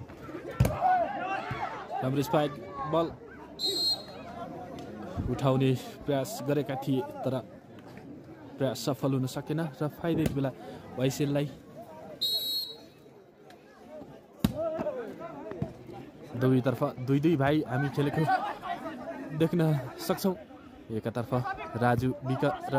राम्रो स्पाइक बल उठाउने प्रयास गरेका थिए तर प्रयास सफल हुन सकेन र फाइदा यति बेला ओएसएललाई दुवैतर्फ 2-2 भाइ हामी खेलेको देख्न सक्छौँ एकतर्फ राजु विक र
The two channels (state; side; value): identical; both; correlation 1.00